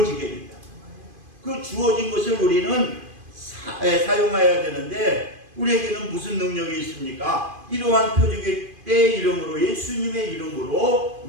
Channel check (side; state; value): left; late; 2.5 ms